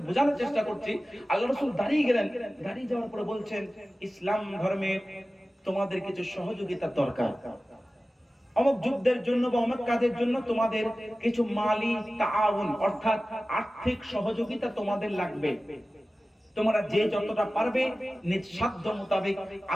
বোঝানোর চেষ্টা করছি। আল্লাহ রাসূল দাঁড়িয়ে গেলেন, দাঁড়িয়ে যাওয়ার পরে বলছেন, ইসলাম ধর্মে তোমাদের কিছু সহযোগিতার দরকার। অমুক যুদ্ধের জন্য বা অমুক কাজের জন্য তোমাদের কিছু মালি তাআউন অর্থাৎ আর্থিক সহযোগিতা তোমাদের লাগবে। তোমরা যে যতটা পারবে নিজ সাধ্য মোতাবেক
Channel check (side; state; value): both; normal; correlation 0.96